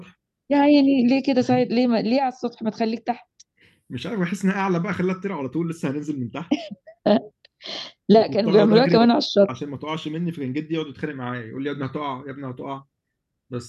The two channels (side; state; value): both; identical; correlation 1.00